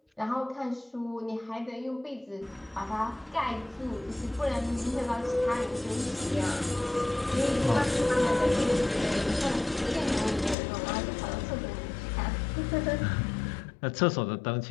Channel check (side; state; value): right; drops out; at 10.6 s